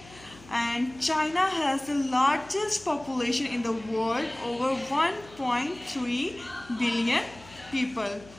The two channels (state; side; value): noise; left; hum, 22 dB below the sound